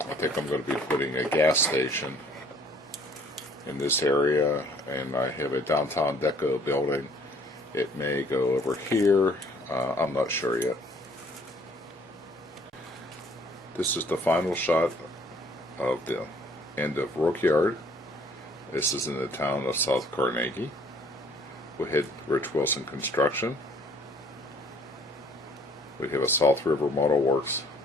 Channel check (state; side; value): normal; both; correlation 0.58